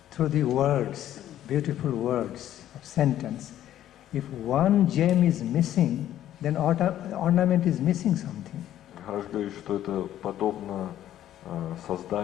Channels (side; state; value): right; quieter; 12.1 dB